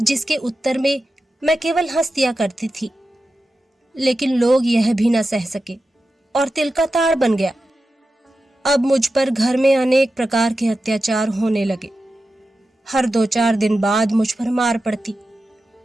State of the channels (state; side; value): normal; both; correlation 0.92